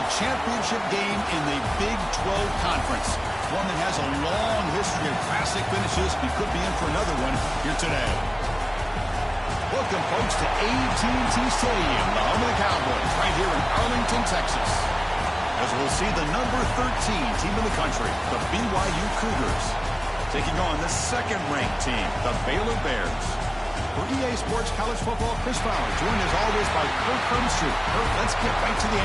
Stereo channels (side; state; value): both; identical; correlation 1.00